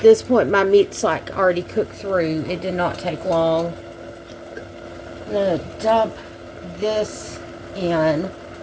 point, my meat's like already cooked through. It did not take long. I'm going to dump this in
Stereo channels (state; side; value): identical; both; correlation 1.00